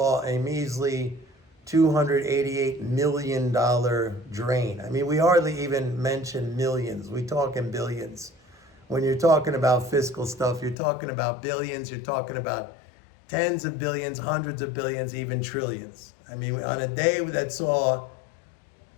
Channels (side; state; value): right; drops out; at 10.8 s